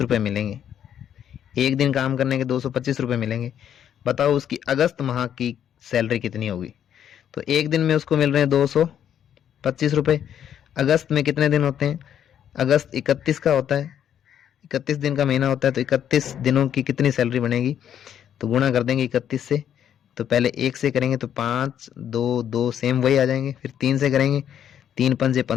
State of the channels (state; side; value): quieter; right; 9.6 dB